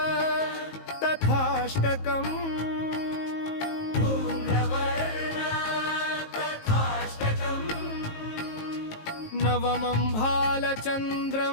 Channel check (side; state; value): right; late; 19 ms